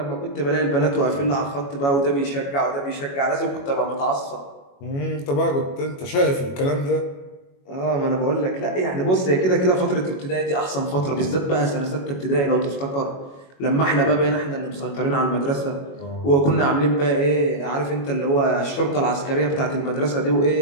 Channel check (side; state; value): right; late; 21 ms